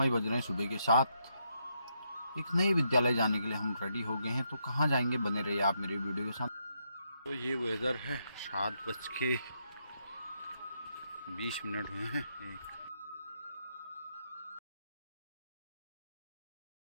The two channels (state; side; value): inverted; both; correlation -0.79